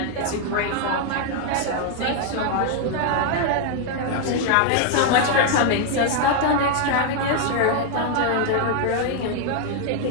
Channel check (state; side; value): different; both; correlation 0.00